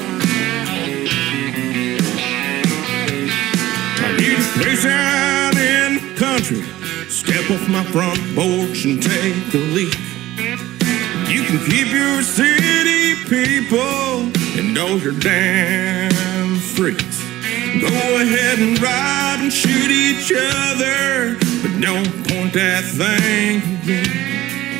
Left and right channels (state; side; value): quieter; left; 15.8 dB